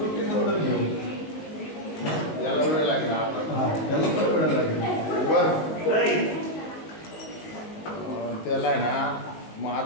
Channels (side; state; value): right; late; 19 ms